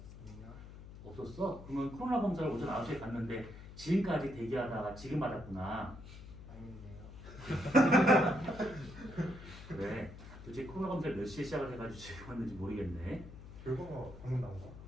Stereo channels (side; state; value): left; noise; hum, 14 dB below the sound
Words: 아니요. 없었어? 그러면 코로나 검사를 오전 9시에 갔는데 지금까지 대기하다가 지금 받았구나. 아닌데요. 그래. 도대체 코로나 검사를 몇 시에 시작을 해가지고 지금 왔는지 모르겠네. 결과가 방금 나온 거야?